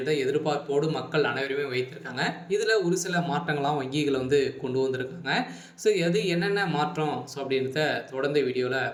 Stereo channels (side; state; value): both; identical; correlation 1.00